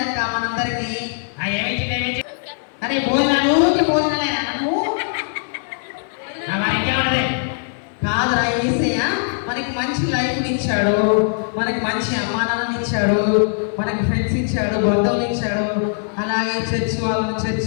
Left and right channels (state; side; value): silent; right; digital silence